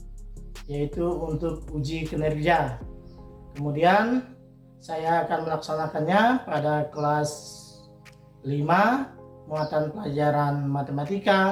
yaitu untuk uji kinerja. Kemudian, saya akan melaksanakannya pada kelas 5, muatan pelajaran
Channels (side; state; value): both; identical; correlation 1.00